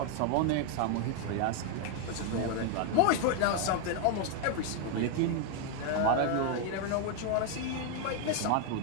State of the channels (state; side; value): different; both; correlation 0.01